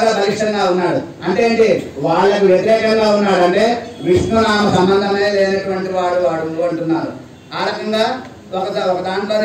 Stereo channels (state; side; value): identical; both; correlation 1.00